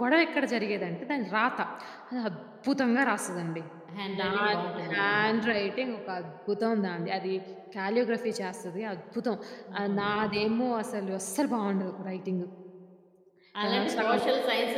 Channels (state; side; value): identical; both; correlation 1.00